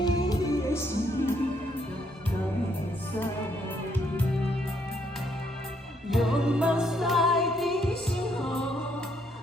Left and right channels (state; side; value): normal; both; correlation 0.72